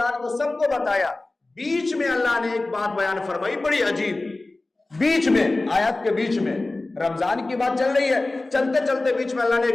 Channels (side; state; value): right; quieter; 3.0 dB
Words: کو، سب کو بتایا۔ بیچ میں اللہ نے ایک بات بیان فرمائی بڑی عجیب، بیچ میں آیات کے بیچ میں رمضان کی بات چل رہی ہے، چلتے چلتے بیچ میں اللہ نے